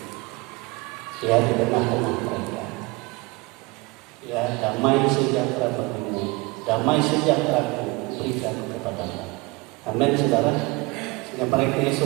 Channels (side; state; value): left; quieter; 25.0 dB